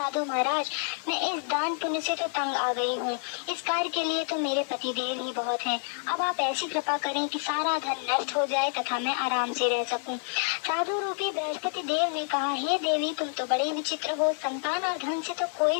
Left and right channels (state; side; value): silent; right; 59 dB below the other